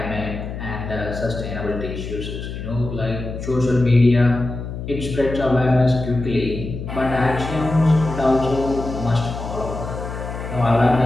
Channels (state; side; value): noise; left; hum, 7 dB below the sound